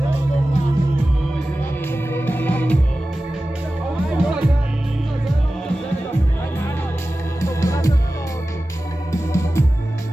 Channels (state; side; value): normal; both; correlation 0.95